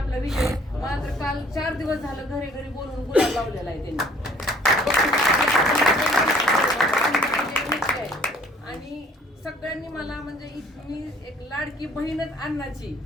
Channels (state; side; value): normal; both; correlation 0.57